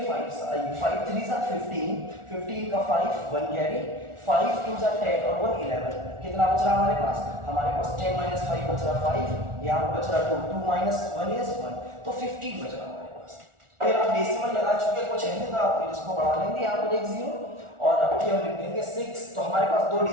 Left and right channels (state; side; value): late; left; 1.4 ms